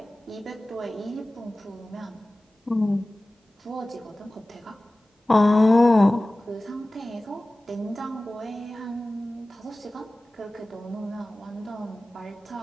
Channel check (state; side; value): normal; both; correlation 0.97